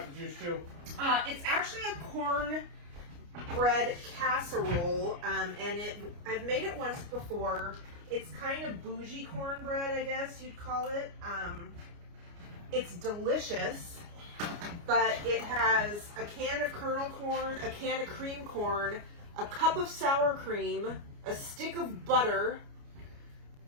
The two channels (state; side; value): late; left; 29 ms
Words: the juice too. It's actually a corn bread casserole, and I've made it once before. It's kind of bougie cornbread, I guess you'd call it. It's delicious, but it has a can of kernel corn, a can of cream corn, a cup of sour cream, a stick of butter